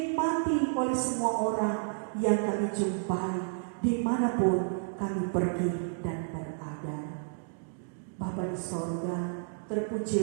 oleh semua orang yang kami jumpai dimanapun kami pergi dan berada. Bapa di sorga,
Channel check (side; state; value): left; silent; digital silence